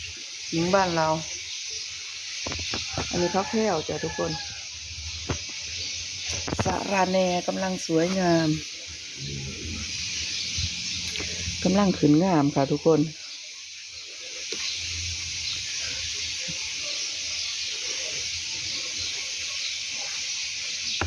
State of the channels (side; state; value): both; identical; correlation 1.00